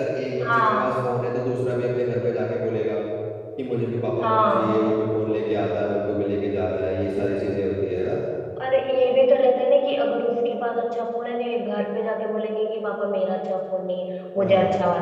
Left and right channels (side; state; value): both; identical; correlation 1.00